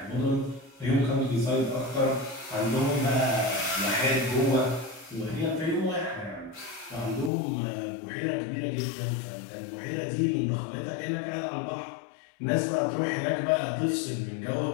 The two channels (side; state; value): right; drops out; at 7.3 s